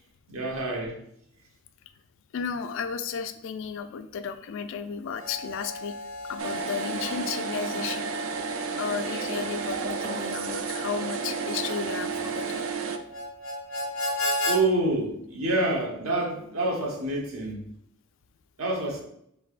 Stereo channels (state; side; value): normal; both; correlation -0.08